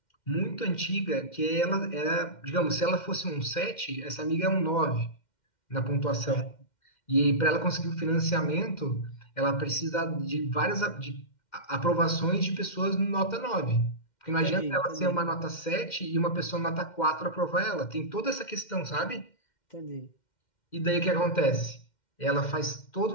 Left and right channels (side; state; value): right; late; 2.1 ms